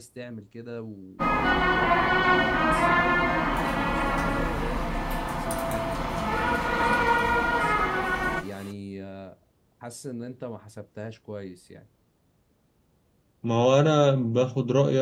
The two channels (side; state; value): both; identical; correlation 1.00